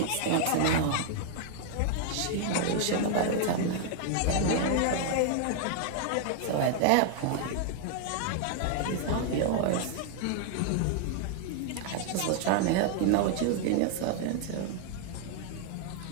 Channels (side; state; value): both; different; correlation 0.00